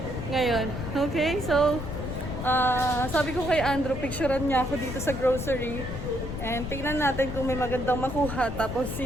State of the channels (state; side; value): noise; left; rumble, 7 dB below the sound